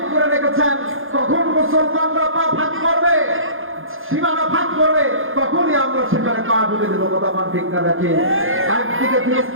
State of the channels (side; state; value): left; late; 0.60 ms